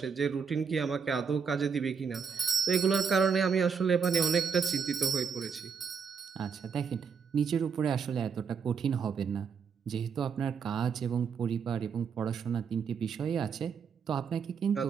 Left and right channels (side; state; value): left; quieter; 6.2 dB